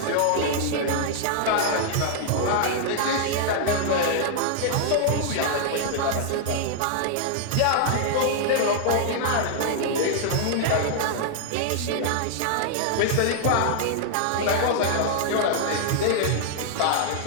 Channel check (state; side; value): different; both; correlation -0.01